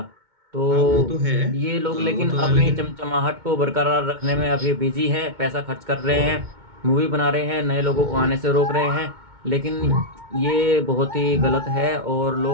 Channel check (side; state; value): left; late; 2.2 ms